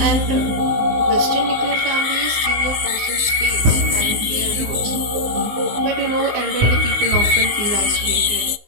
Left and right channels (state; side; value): late; left; 19 ms